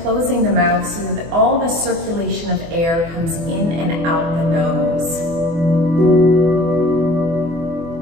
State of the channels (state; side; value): late; left; 24 ms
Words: closing the mouth so that all the circulation of air comes in and out the nose.